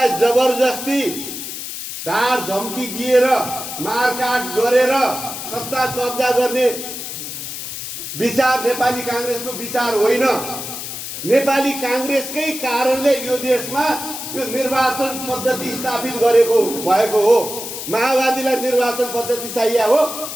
जबरजस्ती धार धम्की दिएर मारकाट गरेर सत्ता कब्जा गर्ने विचार नेपाली कांग्रेसको विचार होइन। नेपाली कांग्रेसकै कारणले यो देशमा यो निर्वाचन पद्धति स्थापित गरेको भएको हो। माओवादीलाई निर्वाचन पद्धति चाहिए हो,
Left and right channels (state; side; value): noise; left; hiss, 7 dB below the sound